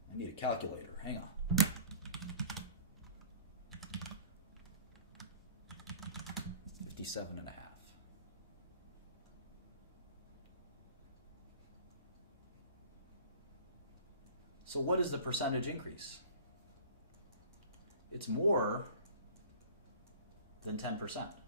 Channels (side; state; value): both; inverted; correlation -0.44